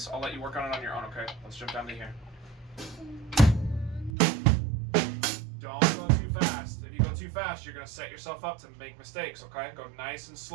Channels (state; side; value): drops out; left; at 4.1 s